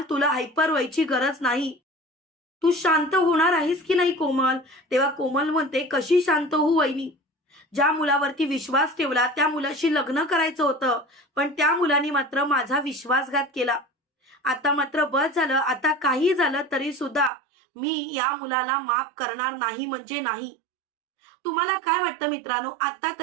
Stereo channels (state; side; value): drops out; left; at 17.3 s